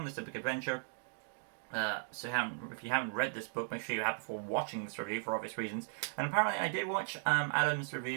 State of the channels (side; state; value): left; silent; digital silence